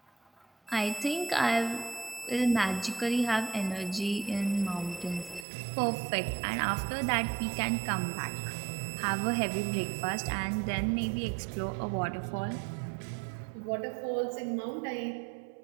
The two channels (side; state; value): left; drops out; at 5.5 s